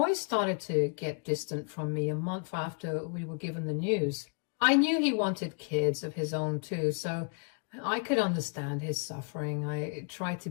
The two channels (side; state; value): right; quieter; 39.3 dB